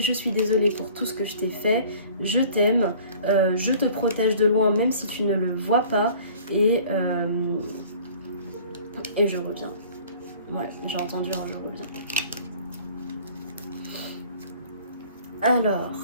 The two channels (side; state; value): both; inverted; correlation -0.50